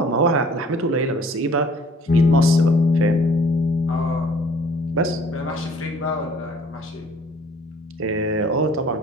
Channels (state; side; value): normal; both; correlation 0.54